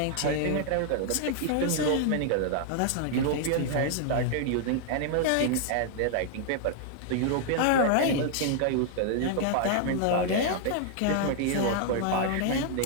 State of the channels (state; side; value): different; both; correlation 0.00